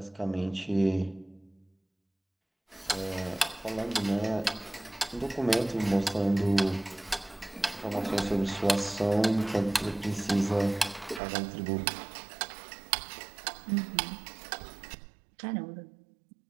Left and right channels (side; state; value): left; drops out; at 11.2 s